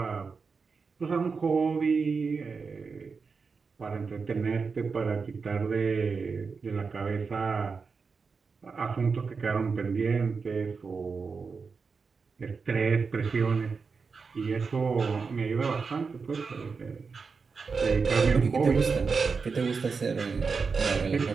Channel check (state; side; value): quieter; left; 5.0 dB